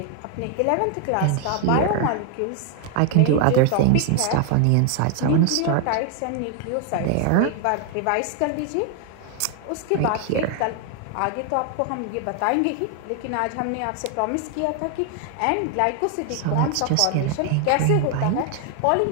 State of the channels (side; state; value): both; different; correlation 0.00